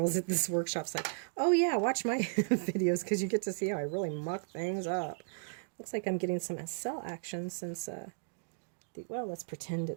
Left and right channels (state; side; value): silent; left; digital silence